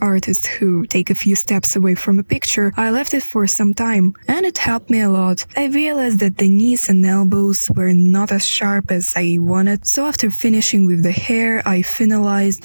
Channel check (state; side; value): inverted; both; correlation -1.00